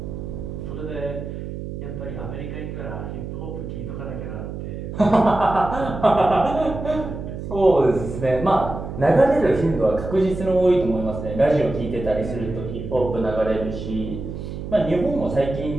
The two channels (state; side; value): noise; right; hum, 8 dB below the sound